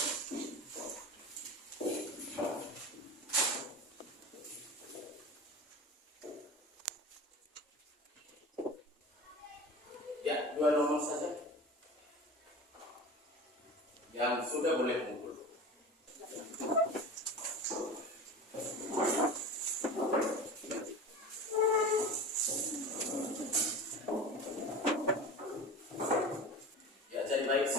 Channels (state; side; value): normal; both; correlation 0.32